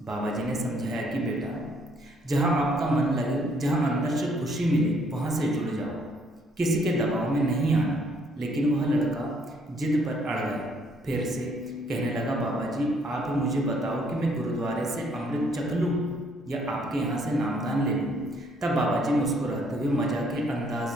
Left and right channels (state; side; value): normal; both; correlation 0.66